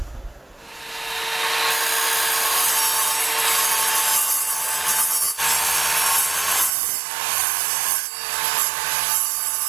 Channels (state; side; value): drops out; left; at 6.7 s